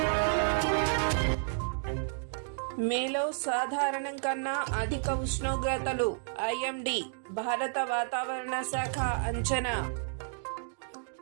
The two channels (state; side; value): silent; left; digital silence